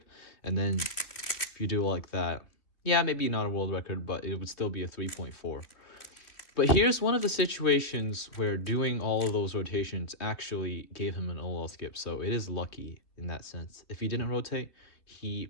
And then if you do it like that, yeah, maybe not a world record, but it would still be a 3.4. But here's one of the situations where doing all of those rotations actually gave him an OLL skip, so it is lucky in that sense. If he didn't rotate,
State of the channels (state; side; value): late; right; 2.8 ms